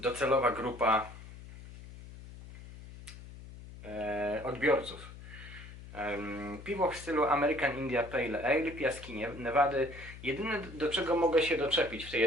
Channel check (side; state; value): left; noise; hum, 15 dB below the sound